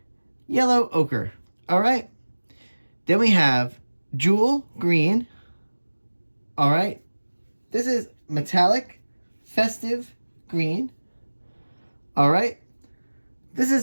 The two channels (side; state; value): both; inverted; correlation -1.00